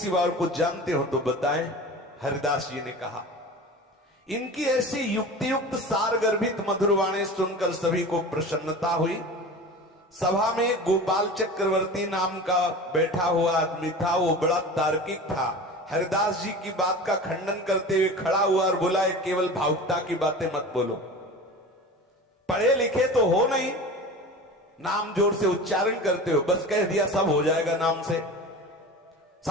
और कुछ जानते हो तो बताएं। हरिदास जी ने कहा, इनकी ऐसी युक्ति युक्त सार गर्भित मधुर वाणी सुनकर सभी को प्रसन्नता हुई। सभा में गोपाल चक्रवर्ती नाम का बैठा हुआ आदमी था, वो बड़ा तार्किक था। हरिदास जी की बात का खंडन करते हुए खड़ा हुआ और बोला, केवल भावुकता की बातें मत बोलो, पढ़े लिखे तो हो नहीं, नाम जोर से उच्चारण करते हो, बस कह दिया सब हो जाएगा नाम से,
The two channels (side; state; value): both; normal; correlation 0.34